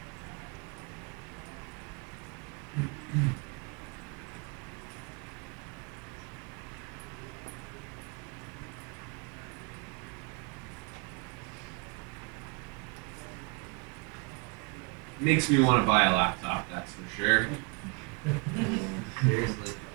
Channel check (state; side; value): quieter; left; 30.8 dB